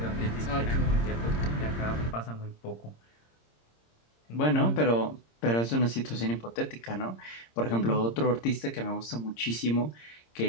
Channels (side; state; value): right; late; 26 ms